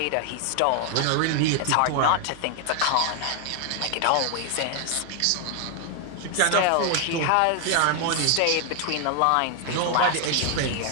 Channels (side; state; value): both; different; correlation 0.00